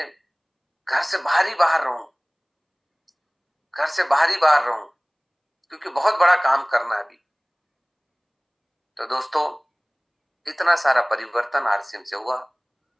घर से बाहर ही बाहर रहूं, घर से बाहर ही बाहर रहूं, क्योंकि बहुत बड़ा काम करना है अभी। तो दोस्तों इतना सारा परिवर्तन आरसीएम से हुआ,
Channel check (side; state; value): both; identical; correlation 1.00